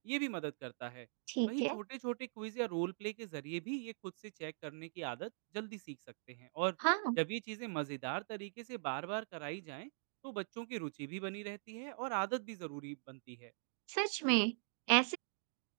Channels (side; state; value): left; silent; digital silence